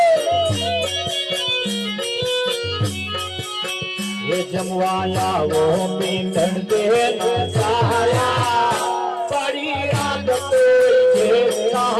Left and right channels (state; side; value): identical; both; correlation 1.00